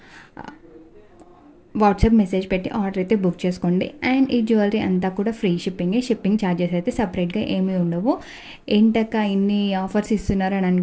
వాట్సాప్ మెసేజ్ పెట్టి ఆర్డర్ అయితే బుక్ చేసుకోండి. అండ్ ఈ జ్యువెలరీ అంతా కూడా ఫ్రీ షిప్పింగ్ ఛార్జెస్ అయితే సపరేట్గా ఏమీ ఉండవు. ఏంటక్క ఇన్ని ఆఫర్స్ ఇస్తున్నారు అని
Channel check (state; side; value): identical; both; correlation 1.00